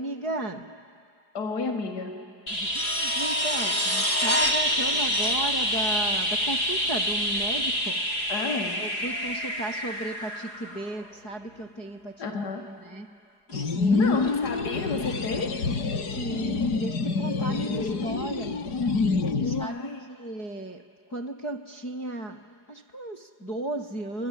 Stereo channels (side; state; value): right; late; 4.8 ms